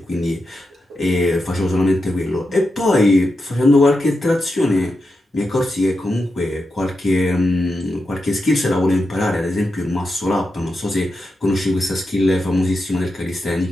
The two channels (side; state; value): both; normal; correlation 0.88